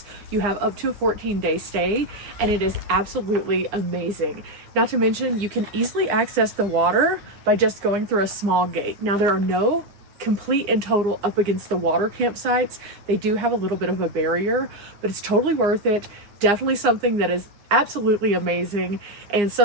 You have up to a 14-day stay, and it is absolutely amazing. Not to mention, you can easily access the water by just going through a small gate. Now, there are no complete and total up against the water campsites. They do have a little bit of a barrier, but it's totally worth it. Definitely something that is absolutely amazing and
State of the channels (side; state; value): left; late; 9.8 ms